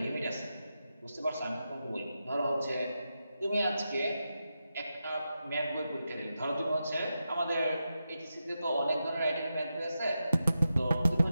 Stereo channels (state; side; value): inverted; both; correlation -0.89